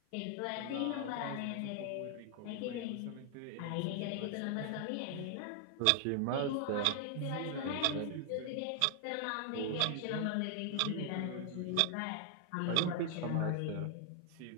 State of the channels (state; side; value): different; both; correlation 0.00